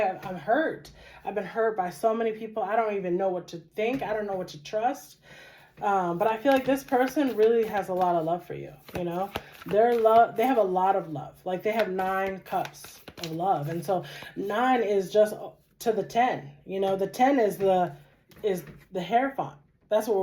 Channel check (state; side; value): identical; both; correlation 1.00